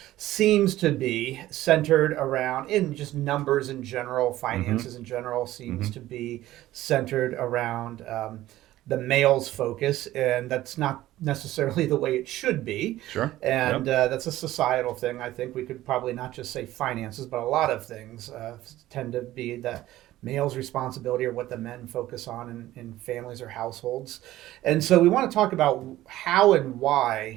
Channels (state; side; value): quieter; left; 15.2 dB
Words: seems to be centered around, in just numbers in general, finances in general, seems to be centered around the male's focus, and that's not necessarily the way it should be. Sure. And that's a societal thing. I think we could probably not just say finances, but a lot of things tend to be the male's responsibility or what the men focus on in families or households. And so we want to talk about how and